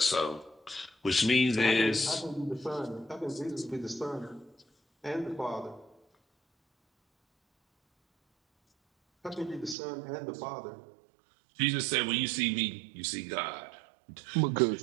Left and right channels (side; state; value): left; drops out; at 9.8 s